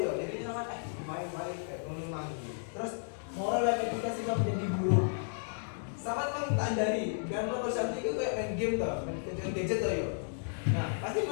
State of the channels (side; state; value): right; silent; digital silence